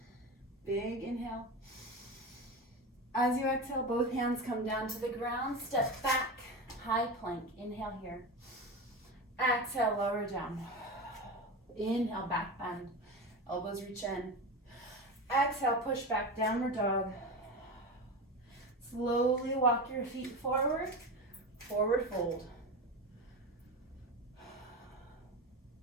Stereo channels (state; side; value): normal; both; correlation 0.24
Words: Big inhale. As you exhale, both hands come down to the ground. Step back, high plank. Inhale here. Exhale, lower down. Inhale, back bend. Elbows reach in. Exhale, push back, downward dog. Slowly walk your feet forward. Forward fold.